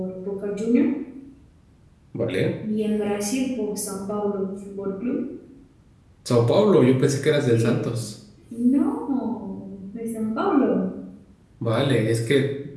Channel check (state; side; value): identical; both; correlation 1.00